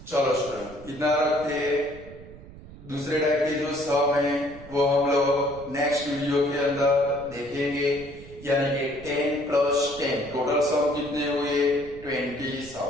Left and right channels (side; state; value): right; noise; rumble, 18 dB below the sound